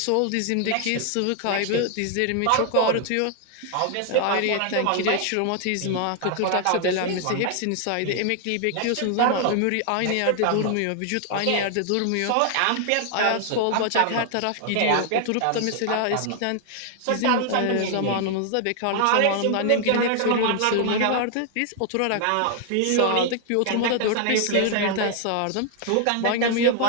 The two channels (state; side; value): different; both; correlation 0.00